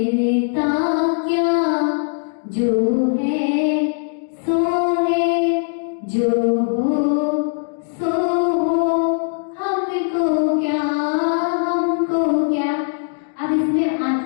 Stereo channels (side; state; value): right; silent; digital silence